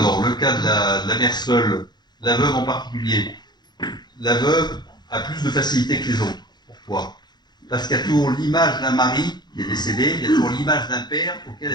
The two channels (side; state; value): right; late; 0.21 ms